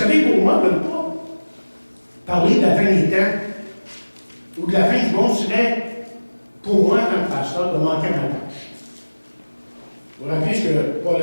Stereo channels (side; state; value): both; inverted; correlation -1.00